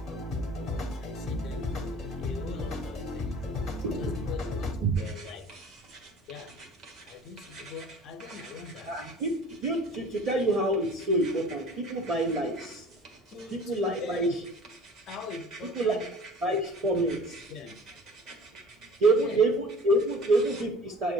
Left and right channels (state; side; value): normal; both; correlation 0.44